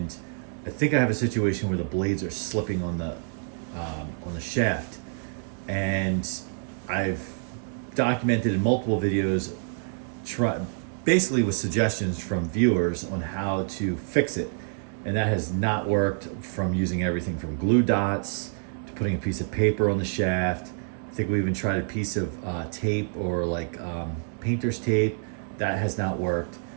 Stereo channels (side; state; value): left; silent; digital silence